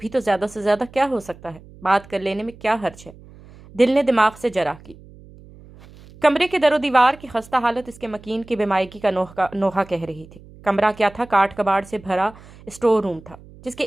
تو زیادہ سے زیادہ کیا ہو سکتا ہے، بات کر لینے میں کیا حرج ہے۔ دل نے دماغ سے جرح کی۔ کمرے کے در و دیوار کی خستہ حالت اس کے مکین کی بیمائگی کا نوحہ کہہ رہی تھی۔ کمرہ کیا تھا، کاٹ کباڑ سے بھرا اسٹور روم تھا، جس کے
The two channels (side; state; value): right; noise; hum, 21 dB below the sound